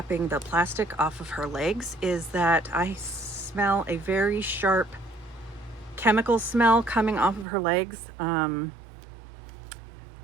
the plastic off of her legs is that I smell a very sharp chemical smell coming off of her legs. I'm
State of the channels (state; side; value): drops out; left; at 7.5 s